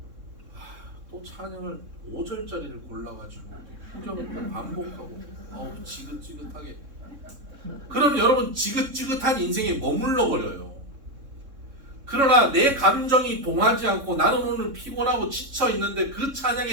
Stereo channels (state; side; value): late; left; 3.6 ms